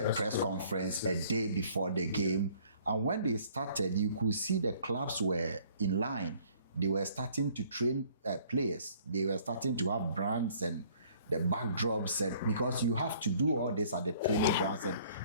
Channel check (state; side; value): inverted; both; correlation -0.58